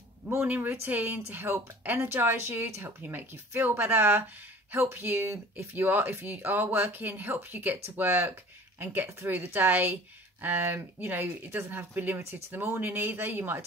morning routine to help energize you, to help you make you feel better, help you if you are working, help you get to work and get through the day. You know, it doesn't have to be limited to the morning either. You might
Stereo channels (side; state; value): both; normal; correlation 0.45